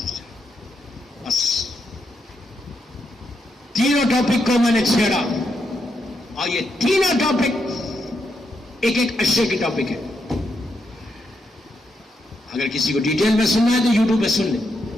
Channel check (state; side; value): normal; both; correlation 0.81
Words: بس تینوں ٹاپک کو میں نے چھیڑا اور یہ تینوں ٹاپک ایک اشے کی ٹاپک ہے. اگر کسی کو ڈیٹیل میں سننا ہے تو یوٹیوب پہ سن لیں.